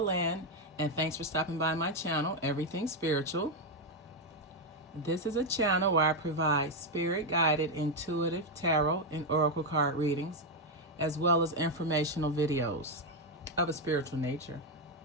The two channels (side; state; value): both; normal; correlation 0.04